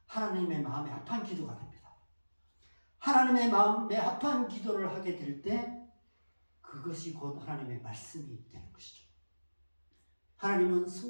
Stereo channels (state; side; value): inverted; both; correlation -1.00